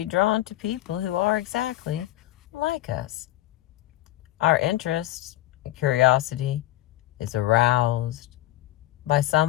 drawn to people who are exactly like us. Our interest and curiosity is aroused by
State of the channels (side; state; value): right; quieter; 15.4 dB